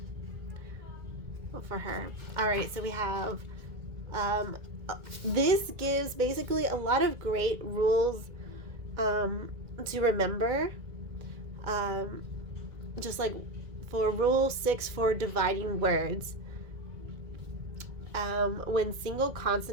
for her. All right, so we have, this gives basically a lot of great rules to remember. Just like for rule 6 for dividing words, when single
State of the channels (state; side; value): late; left; 2.3 ms